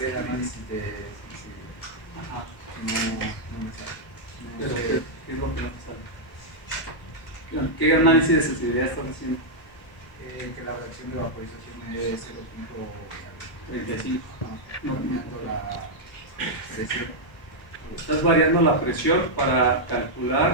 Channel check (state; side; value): late; right; 1.2 ms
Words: análisis de Ajá. no Pero, sé, ¿qué es lo que no te sale? ¿Qué análisis de sensibilidad estás haciendo? que la relación de vaporización es 35. variando la presión. Estás variando la presión para